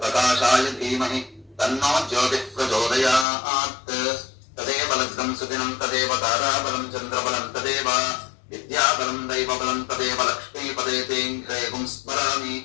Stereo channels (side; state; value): right; drops out; at 3.2 s